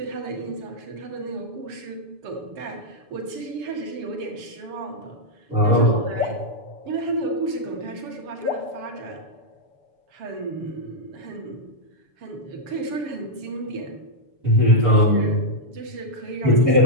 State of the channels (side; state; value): left; late; 7.0 ms